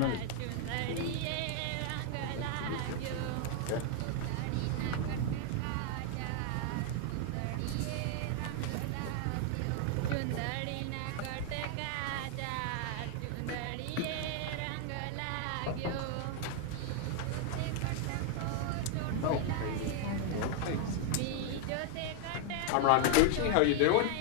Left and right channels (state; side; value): different; both; correlation 0.00